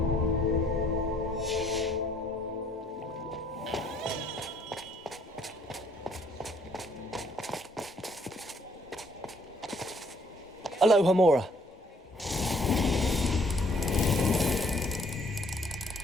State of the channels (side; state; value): both; normal; correlation 0.64